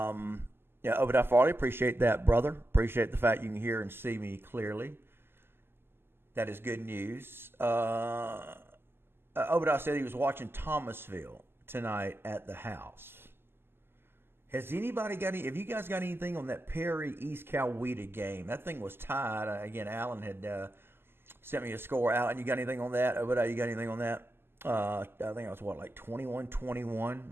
Obadiah Farley, appreciate that, brother. Appreciate the fact you can hear and see me clearly. That is good news. Obadiah said he was watching Thomasville tonight at the house. Has anybody got any? Have you guys got anything on that Perry East Coweta game? That thing was tied. Again, Alan had sent me a score. Alan, you got anything on that? Obadiah, you got anything on that? I think it was like 21-21,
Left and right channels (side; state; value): left; late; 0.11 ms